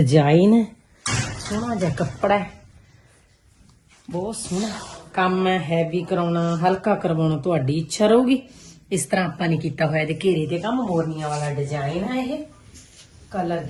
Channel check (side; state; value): both; identical; correlation 1.00